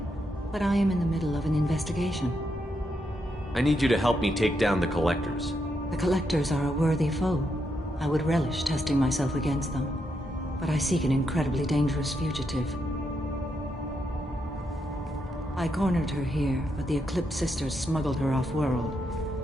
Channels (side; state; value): both; normal; correlation 0.81